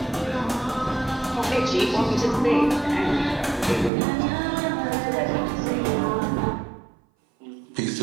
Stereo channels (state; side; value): drops out; left; at 3.9 s